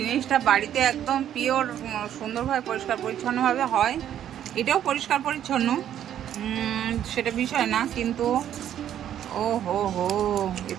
বাড়িতে একদম পিওর, সুন্দরভাবে পরিষ্কার পরিচ্ছন্নভাবে হয়। এটাও পরিষ্কার পরিচ্ছন্ন, সেটা বিষয় না, কিন্তু ও হো হো,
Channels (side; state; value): left; quieter; 10.6 dB